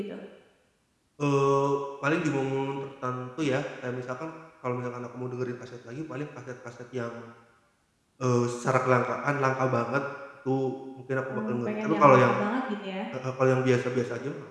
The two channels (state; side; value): identical; both; correlation 1.00